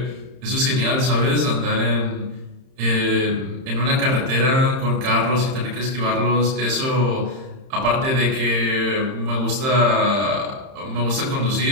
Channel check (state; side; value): late; left; 31 ms